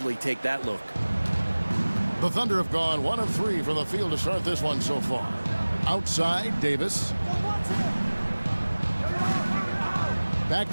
take that look. The Thunder have gone 1 of 3 from the field to start this one so far. Outside, Davis. Back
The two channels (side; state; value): both; inverted; correlation -1.00